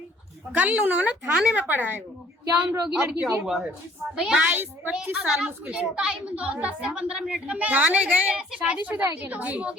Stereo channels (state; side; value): normal; both; correlation 0.58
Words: कल उन्होंने थाने में पढ़ा है। वो क्या उम्र होगी लड़की की? 22-25 साल मुश्किल से। टाइम 10 से 15 मिनट का थाने गए, शादीशुदा है क्या? अब